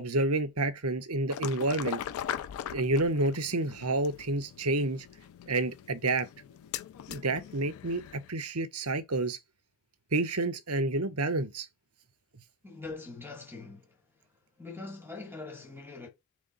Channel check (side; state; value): both; normal; correlation -0.03